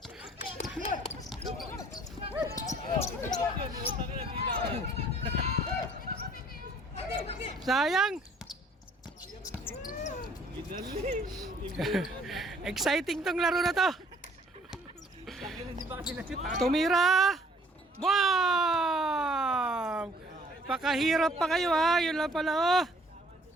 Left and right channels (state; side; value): normal; both; correlation 0.58